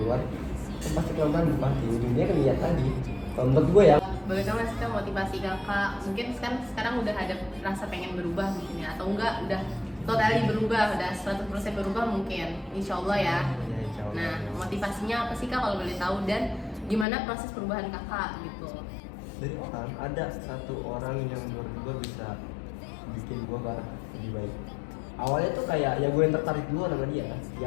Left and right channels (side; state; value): right; drops out; at 17.1 s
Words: kan pasti pelan-pelan berubah. Ujungnya kan niat tadi. Kalau menurut gue ya. Boleh tahu nggak sih Kak, motivasi kakak? Mungkin sekarang udah ada rasa pengen berubah mungkin ya, atau enggak udah totally berubah, udah 100% berubah mungkin, insya Allah ya. Ya, insya Allah. Nah, motivasinya apa sih Kak kalau boleh tahu, dan gimana proses perubahan kakak gitu? Dari orang ada satu orang yang menurut gue bisa bikin gue lebih baik. Awalnya tuh kayak ya gue yang tertarik duluan sama dia,